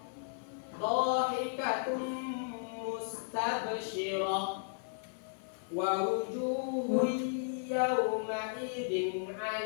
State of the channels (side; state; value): right; silent; 55 dB below the other